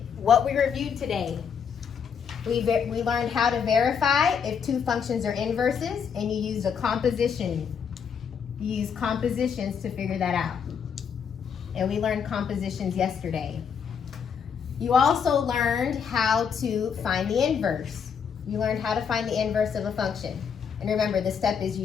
What we reviewed today, we learned how to verify if two functions are inverses, and you used a composition. You use compositions to figure that out. And we learned compositions yesterday. You also learned how to find the inverse. You learned how to find the inverse of a function. And remember, the step is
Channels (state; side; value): quieter; right; 6.9 dB